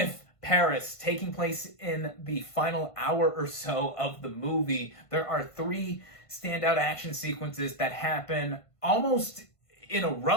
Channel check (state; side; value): late; right; 1.5 ms